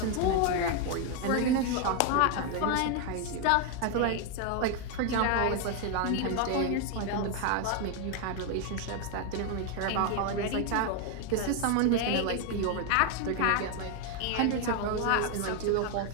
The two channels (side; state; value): both; different; correlation 0.01